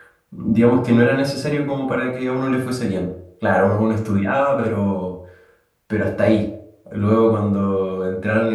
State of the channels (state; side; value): identical; both; correlation 1.00